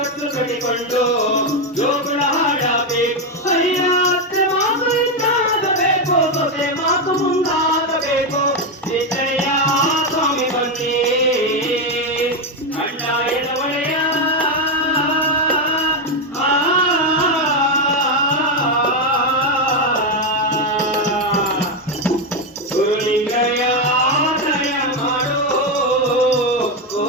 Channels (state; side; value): normal; both; correlation 0.07